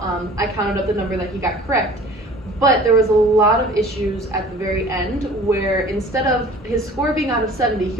I counted up the number that he got correct, but there was a lot of issues at the very end where instead of his score being out of 70,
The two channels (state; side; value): normal; both; correlation 0.47